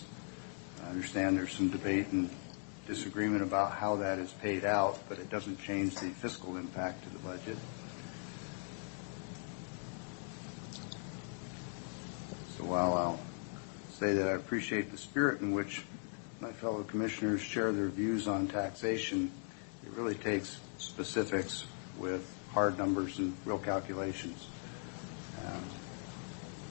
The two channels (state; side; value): silent; right; 52 dB below the other